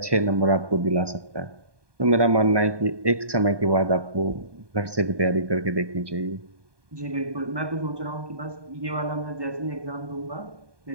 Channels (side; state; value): left; late; 1.2 ms